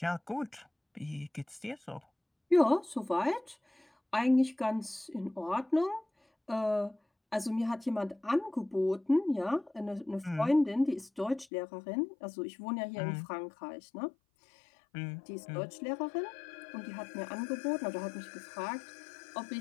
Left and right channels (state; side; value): drops out; right; at 11.5 s